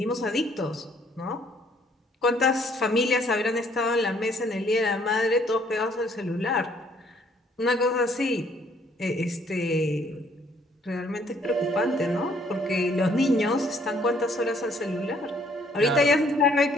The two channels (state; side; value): normal; both; correlation 0.63